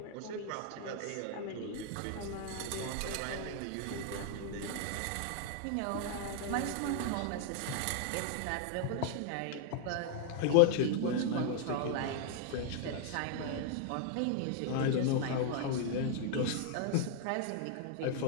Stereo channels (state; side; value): different; both; correlation 0.00